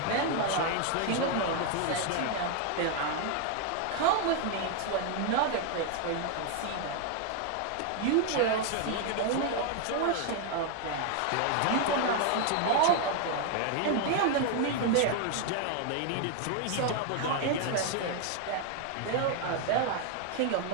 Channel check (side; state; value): both; different; correlation 0.01